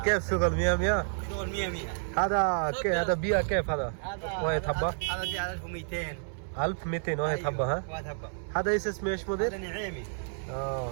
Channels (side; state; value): left; silent; 58 dB below the other